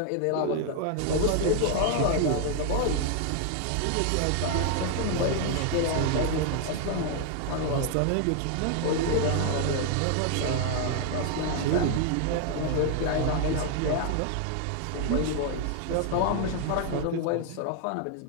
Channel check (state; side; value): different; both; correlation 0.00